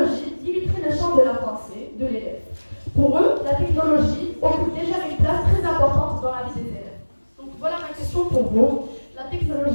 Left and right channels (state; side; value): inverted; both; correlation -1.00